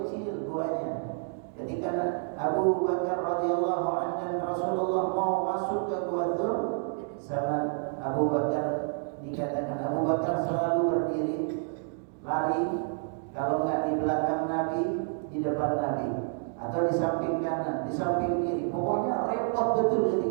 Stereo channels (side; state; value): left; silent; 58 dB below the other